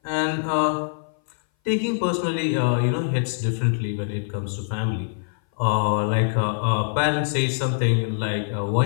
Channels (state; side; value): silent; right; 58 dB below the other